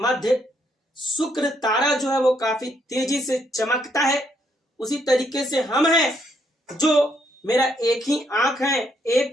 शुक्र तारा जो है वो काफी तेजी से चमकता है, उसी तरीके से हम हैं जो मेरा एक ही आंख है,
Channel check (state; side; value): normal; both; correlation 0.73